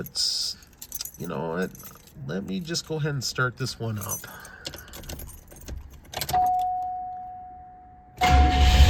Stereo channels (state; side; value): identical; both; correlation 1.00